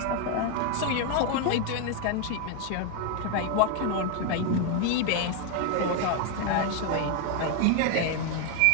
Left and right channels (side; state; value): both; different; correlation 0.01